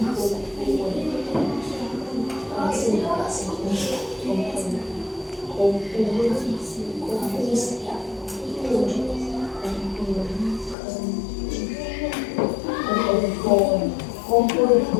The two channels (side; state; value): right; drops out; at 10.8 s